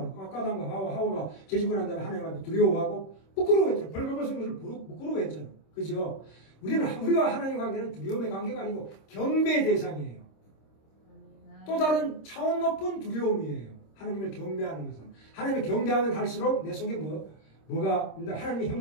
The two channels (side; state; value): right; late; 26 ms